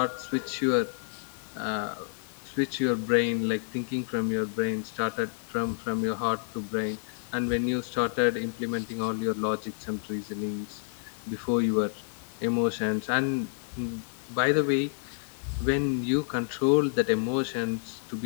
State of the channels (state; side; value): silent; right; digital silence